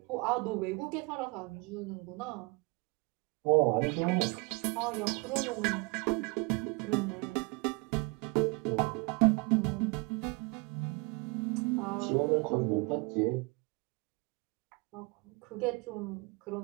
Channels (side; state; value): left; quieter; 28.4 dB